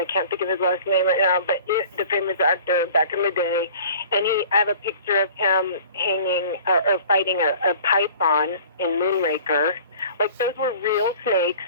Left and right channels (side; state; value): both; inverted; correlation -0.46